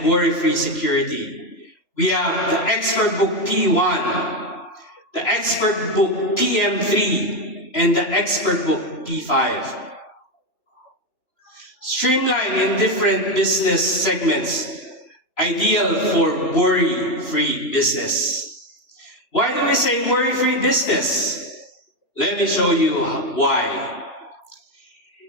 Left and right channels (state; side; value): late; right; 2.7 ms